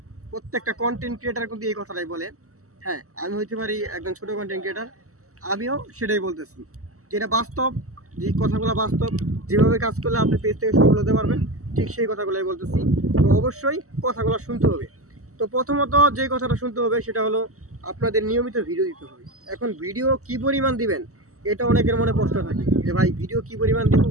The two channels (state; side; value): late; left; 0.65 ms